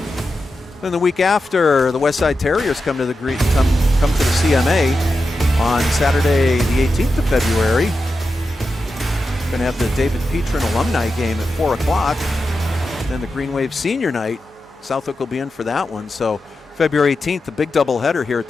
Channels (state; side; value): normal; both; correlation 0.90